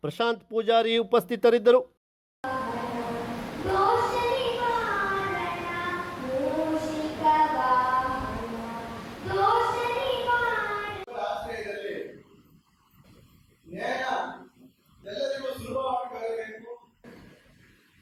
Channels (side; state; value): both; identical; correlation 1.00